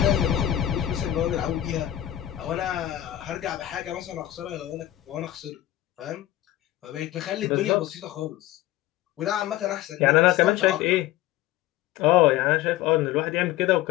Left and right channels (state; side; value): quieter; right; 14.0 dB